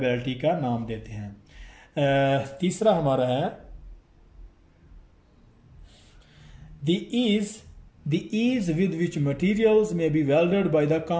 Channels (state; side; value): identical; both; correlation 1.00